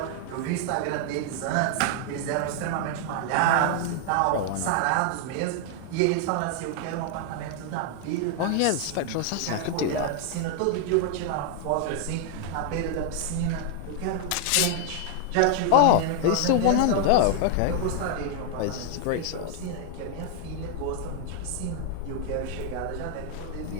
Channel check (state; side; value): different; both; correlation 0.00